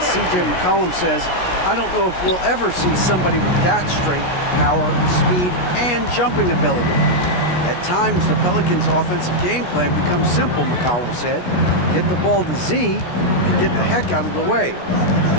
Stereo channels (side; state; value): right; late; 17 ms